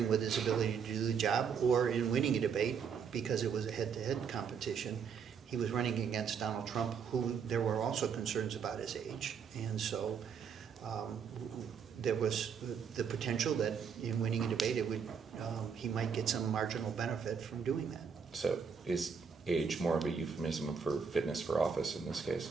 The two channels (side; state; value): left; quieter; 6.5 dB